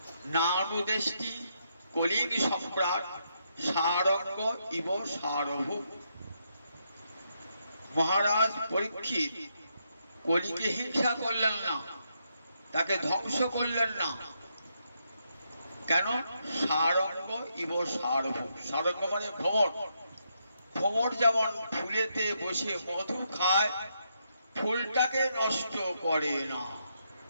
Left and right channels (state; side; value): inverted; both; correlation -0.79